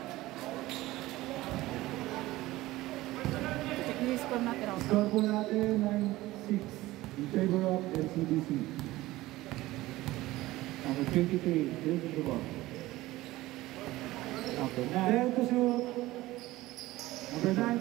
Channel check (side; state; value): left; quieter; 17.7 dB